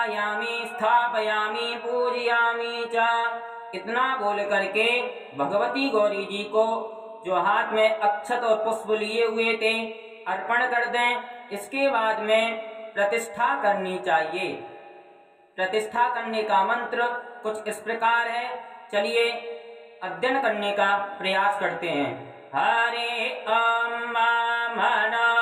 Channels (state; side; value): identical; both; correlation 1.00